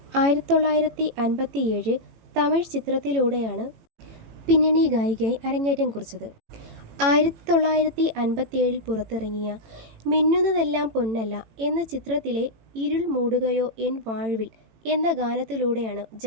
1957 തമിഴ് ചിത്രത്തിലൂടെയാണ് പിന്നണി ഗായികയായി അരങ്ങേറ്റം കുറിച്ചത്. 1957 പുറത്തിറങ്ങിയ മിന്നുന്നതെല്ലാം പൊന്നല്ല എന്ന ചിത്രത്തിലെ ഇരുൾ മൂടുകയോ എൻ വാഴ്വിൽ എന്ന ഗാനത്തിലൂടെയാണ്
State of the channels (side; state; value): left; late; 18 ms